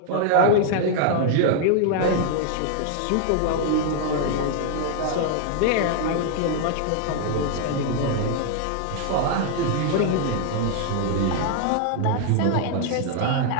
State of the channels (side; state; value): both; different; correlation 0.00